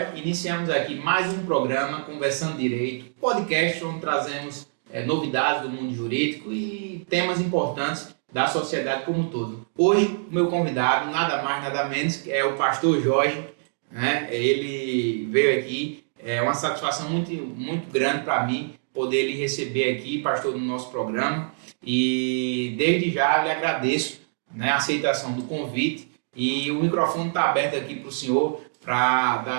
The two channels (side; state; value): left; silent; digital silence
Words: Iniciamos aqui mais um programa Conversando Direito, podcast onde trazemos novidades do mundo jurídico e temas importantes da sociedade como um todo. Hoje, o meu convidado, nada mais, nada menos, é o pastor Jorge, né? Ele veio aqui, é uma satisfação muito grande para mim poder lhe receber aqui, pastor, no nosso programa, e desde já eu lhe agradeço, né, a aceitação do convite e o microfone está aberto aqui para o senhor para